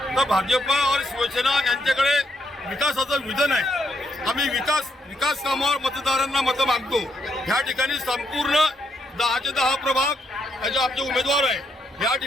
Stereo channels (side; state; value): both; normal; correlation 0.77